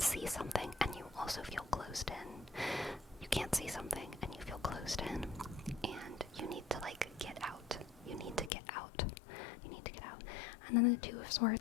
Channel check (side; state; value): right; drops out; at 8.5 s